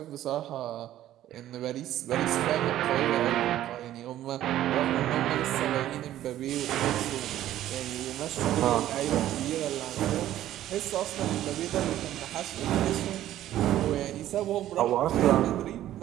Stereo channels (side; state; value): left; quieter; 13.0 dB